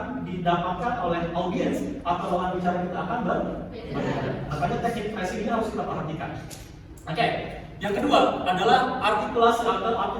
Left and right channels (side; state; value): both; identical; correlation 1.00